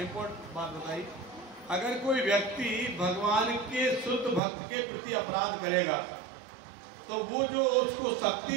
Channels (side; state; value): left; drops out; at 4.4 s